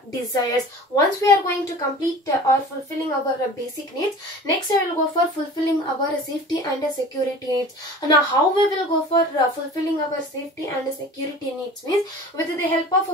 desires. Once we are going to complete or fulfilling our basic needs, next I will go for fulfilling our safety and security needs. Now how we will go for fulfilling our safety and security needs means with the help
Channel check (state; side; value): normal; both; correlation 0.40